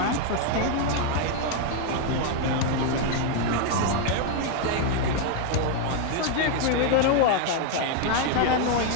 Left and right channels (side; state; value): both; different; correlation 0.01